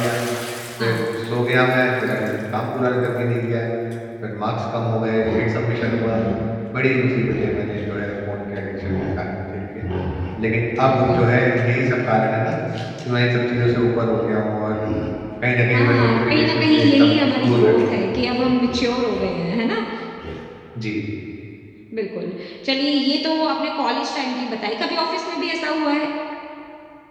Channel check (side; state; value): both; identical; correlation 1.00